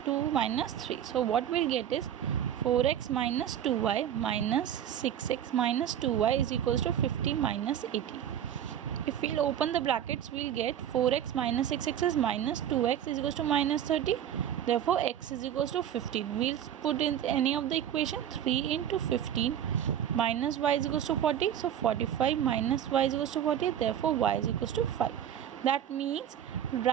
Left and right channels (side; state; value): left; quieter; 10.1 dB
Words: minus 3. So what we'll get is 4x minus 2y minus 6x minus 2y is equals to 50 minus 80. If we'll open the brackets, we'll get 4x minus 6x is minus 2x is equals to minus 30. Therefore x is equals to 15. We'll put in any of the equation. 3 into 15 minus y is equals to 40. So 45 minus y is equals to 40. Therefore y is equals to 5. That means